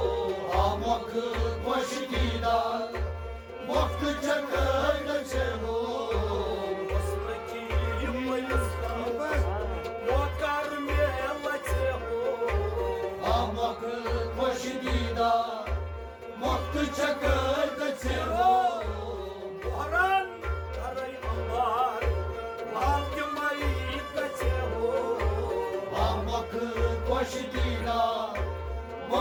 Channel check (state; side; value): identical; both; correlation 1.00